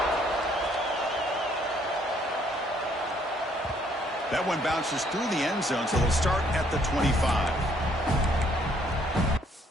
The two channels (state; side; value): normal; both; correlation 0.66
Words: That one bounces through the end zone, so they'll start at the 25.